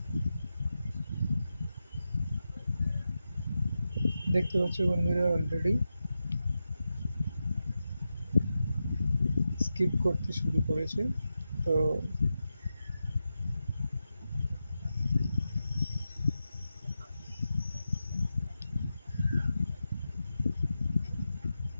দেখতে পাচ্ছ বন্ধুরা অলরেডি স্কিপ করতে শুরু করেছে। তো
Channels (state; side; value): inverted; both; correlation -0.90